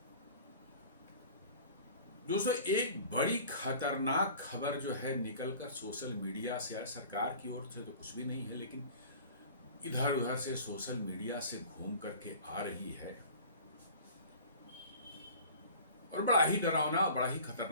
दोस्तों, एक बड़ी खतरनाक खबर जो है निकलकर सोशल मीडिया से आए, सरकार की ओर से तो कुछ भी नहीं है, लेकिन इधर उधर से सोशल मीडिया से घूम करके आ रही है और बड़ा ही डरावना, बड़ा ही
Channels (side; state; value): both; inverted; correlation -0.44